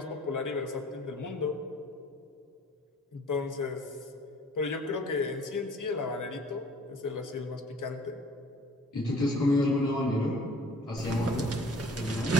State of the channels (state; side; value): normal; both; correlation 0.52